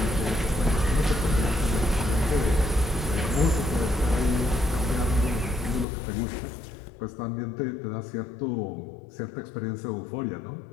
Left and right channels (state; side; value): drops out; right; at 5.9 s